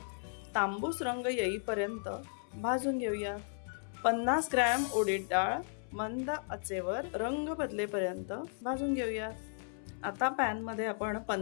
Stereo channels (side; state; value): right; silent; 54 dB below the other